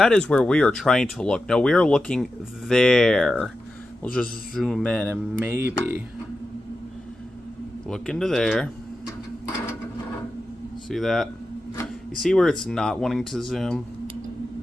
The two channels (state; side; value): normal; both; correlation 0.91